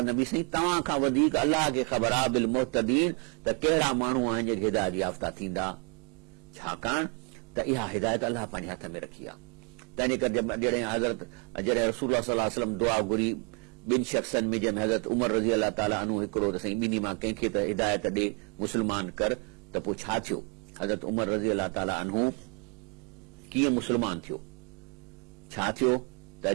नबी साईं तव्हां खां वधीक अल्लाह खे ख़बर आहे बिल मुहतदीन, त कहिड़ा माण्हू आहिनि जेके हिदायत याफ़्ता थींदा। छाकाणि त इहा हिदायत अल्लाह पंहिंजे हथ में रखी आहे। तंहिंजे करे जॾहिं रसूलुल्लाह सल्लल्लाहु अलैहि वसल्लम दुआ घुरी ॿिनि शख़्सनि में, जंहिंमें हज़रत उमर रज़ी अलाह ताला अन्हु हिकिड़ो, त साईं ॿिन्ही मां कंहिंखे त हिदायत ॾे, मुस्लमान कर। त पोइ छा थियो? हज़रत उमर रज़ी अलाह ताला अन्हु कीअं मुस्लमान थियो? छा थियो त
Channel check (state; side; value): quieter; left; 34.4 dB